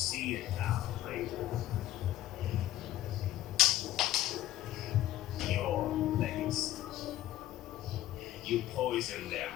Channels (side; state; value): right; quieter; 14.2 dB